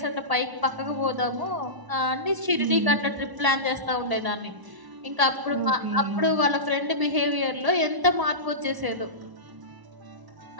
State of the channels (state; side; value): late; left; 1.0 ms